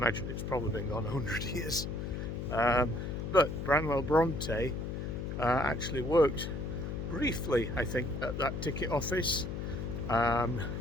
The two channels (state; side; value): noise; left; hum, 4 dB below the sound